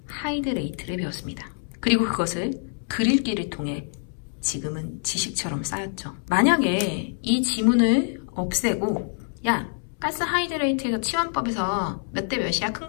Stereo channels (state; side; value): silent; right; 61 dB below the other